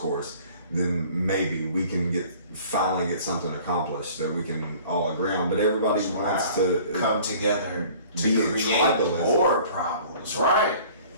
then maybe we can finally get something accomplished that we can all agree on. But everybody wants to come together to create more problems, right?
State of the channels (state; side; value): inverted; both; correlation -0.50